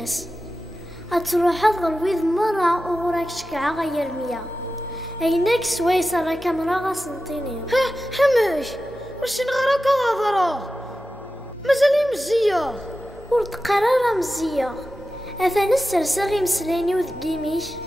اتروح غرويض مرة وغراك شكعة غير رمية ايناك سويسة راك مرة غاسنطيني. حماش واش نغراك هضرة مازالي مزية ورد قرارة مزية اثان السرساغي مسلاني وذقيميش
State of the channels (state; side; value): normal; both; correlation 0.93